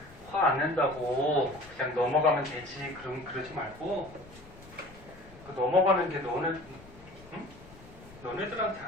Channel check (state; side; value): noise; left; rumble, 21 dB below the sound